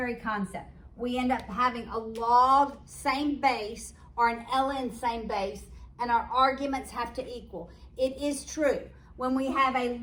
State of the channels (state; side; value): identical; both; correlation 1.00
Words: concept. We end up having a log same base or an ln same base, and our arguments have to equal. It is true. When we have a